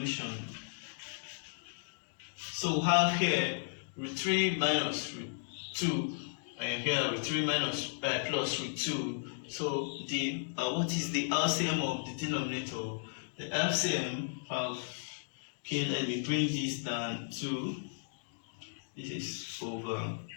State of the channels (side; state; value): right; silent; digital silence